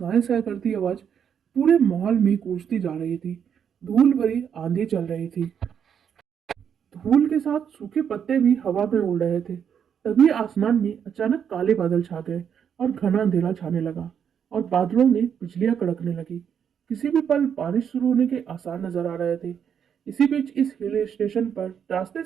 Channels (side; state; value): left; quieter; 8.0 dB